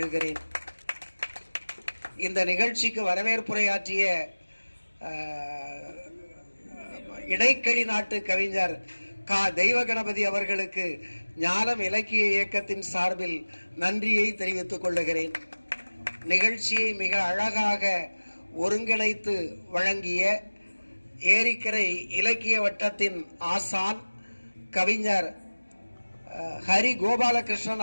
இந்த நிகழ்ச்சிக்கு வரவேற்புரையாற்றிய இடைக்கழி நாட்டு கவிஞர் கா தெய்வ கணபதி அவர்களுக்கு ஞாலம் இலக்கிய இயக்கத்தின் சார்பில் நன்றியை தெரிவித்துக் கொள்ளுகிறேன். நிகழ்ச்சியை மிக அழகாக ஒருங்கிணைத்து வழங்கிய ஏரிக்கரை இலக்கிய வட்டத்தின் ஆசான் கவிஞர் ஹரி கோபாலகிருஷ்ணன்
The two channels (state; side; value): inverted; both; correlation -1.00